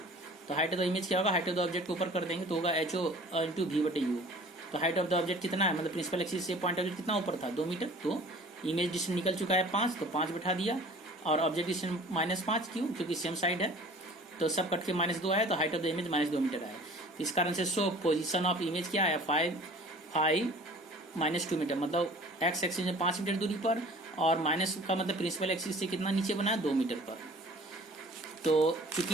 तो हाइट ऑफ द इमेज क्या होगा, हाइट ऑफ द ऑब्जेक्ट को ऊपर कर देंगे तो होगा ho × v/u। तो हाइट ऑफ द ऑब्जेक्ट कितना है, मतलब प्रिंसिपल एक्सिस से पॉइंट ऑब्जेक्ट कितना ऊपर था 2 मीटर, तो इमेज डिस्टेंस निकल चुका है 5, तो 5 बैठा दिया। और ऑब्जेक्ट डिस्टेंस -5 क्यों, क्योंकि सेम साइड है, तो सब कट के -2 आया, तो height of the image -2 metre आया। इस कारण से सो पोजीशन ऑफ इमेज क्या आया 5 -2 मीटर, मतलब एक्स एक्सिस में 5 मीटर दूरी पर, और माइनस का मतलब प्रिंसिपल एक्सिस से कितना नीचे बना है 2 मीटर पर। तो क्योंकि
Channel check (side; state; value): both; normal; correlation 0.47